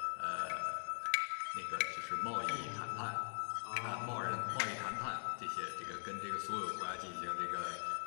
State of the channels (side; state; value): right; silent; digital silence